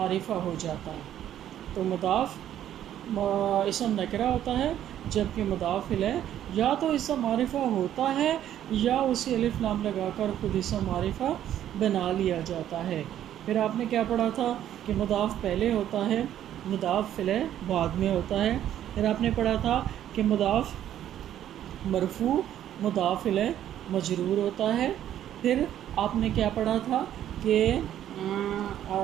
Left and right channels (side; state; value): left; quieter; 11.2 dB